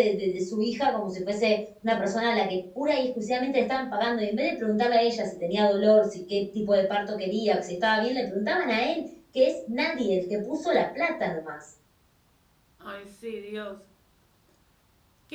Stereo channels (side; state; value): both; identical; correlation 1.00